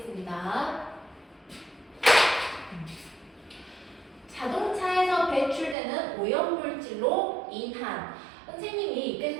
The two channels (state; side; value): drops out; left; at 5.8 s